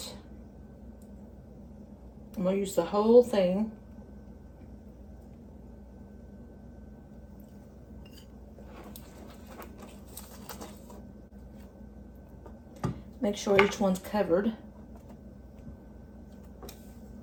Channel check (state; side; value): identical; both; correlation 1.00